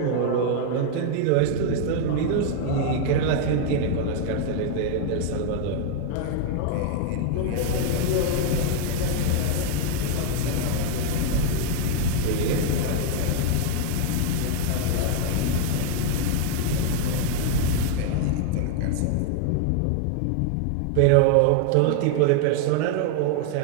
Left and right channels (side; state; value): both; different; correlation 0.01